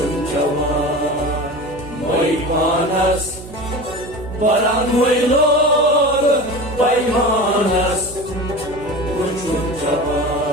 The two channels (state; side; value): noise; right; hum, 16 dB below the sound